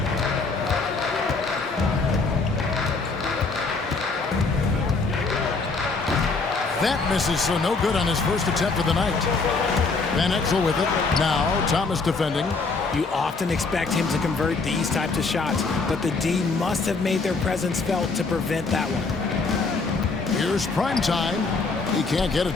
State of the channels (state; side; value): quieter; right; 4.1 dB